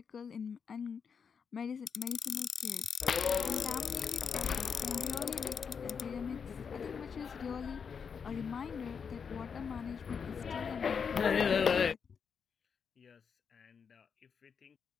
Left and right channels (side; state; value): right; quieter; 6.4 dB